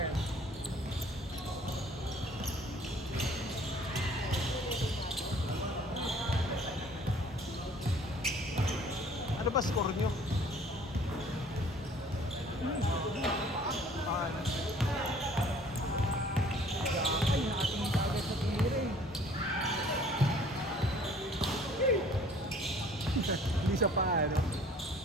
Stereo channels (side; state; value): both; normal; correlation 0.54